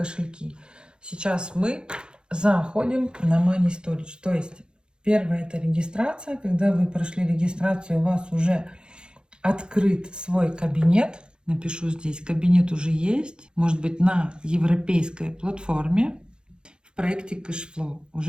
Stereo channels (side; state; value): left; late; 0.049 ms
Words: Сейчас мы заходим на Money Storage. То есть первое — это регистрация. Когда вы прошли регистрацию, у вас уже открыт свой кабинет. Напишу здесь: кабинет уже есть. Может быть, на европейской платформе в проекте Cashflow